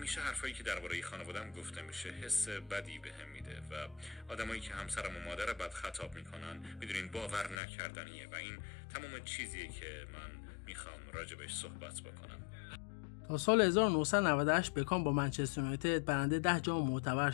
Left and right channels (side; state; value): right; drops out; at 7.6 s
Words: حرفایی که درباره خانواده‌ام گفته میشه حس بدی بهم میده و آدمایی که همسرم و مادر بد خطاب میکنن میدونین باور نکردنیه و این تمام چیزیه که من میخوام راجبش صحبت بکنم. تا سال 1998 بکام با منچستر یونایتد برنده 10 جام معتبر